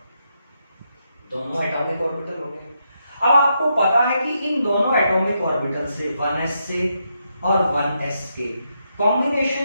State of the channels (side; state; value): both; inverted; correlation -0.81